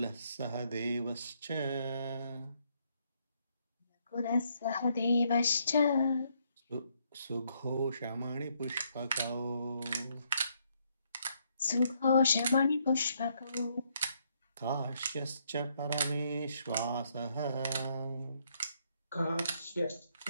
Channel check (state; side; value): inverted; both; correlation -0.72